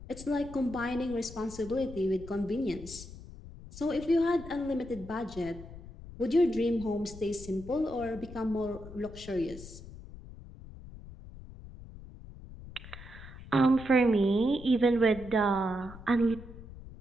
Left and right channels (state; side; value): noise; left; rumble, 15 dB below the sound